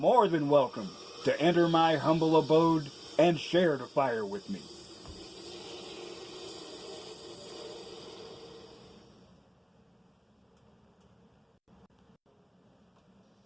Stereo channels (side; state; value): both; identical; correlation 1.00